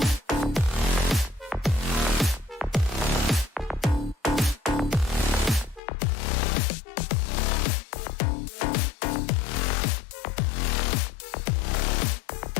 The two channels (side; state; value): right; drops out; at 5.8 s